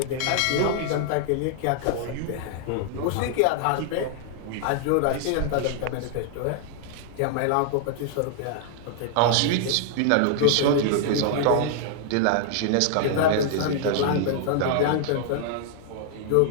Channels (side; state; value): both; different; correlation 0.00